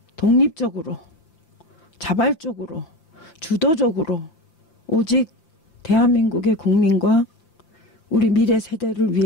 독립적으로 자발적으로 주도적으로 오직 대한민국의 국민과 우리 미래 세대를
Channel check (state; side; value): late; right; 5.9 ms